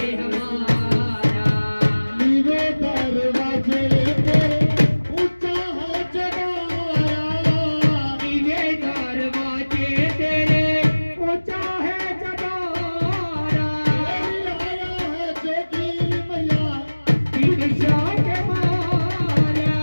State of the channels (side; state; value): both; inverted; correlation -1.00